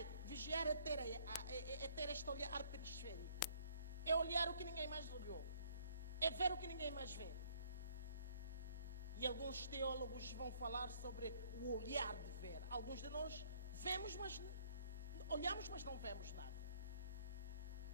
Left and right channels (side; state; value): both; inverted; correlation -0.62